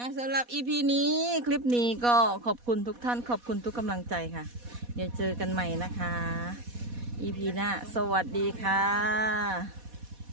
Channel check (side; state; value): left; late; 4.1 ms